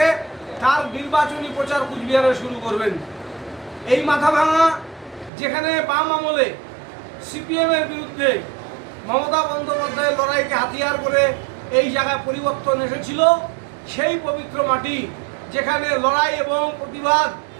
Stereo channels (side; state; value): left; drops out; at 5.3 s